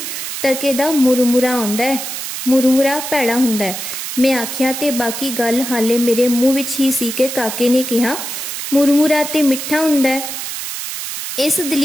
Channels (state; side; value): noise; right; hiss, 6 dB below the sound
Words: टके दा मुरमुरा आउंदा है, मुरमुरा भैड़ा हुंदा है। मैं आख्या ते बाकी गल हाले मेरे मुंह विच ही सी कि काके ने कहा, मुरमुरा ते मिठा हुंदा है। इस